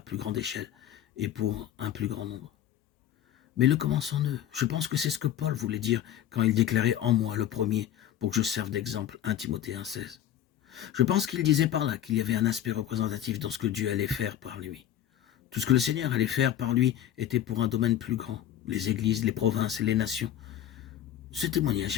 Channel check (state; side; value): quieter; right; 11.1 dB